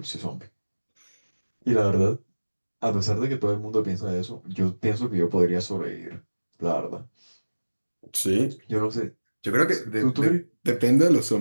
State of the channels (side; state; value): both; inverted; correlation -1.00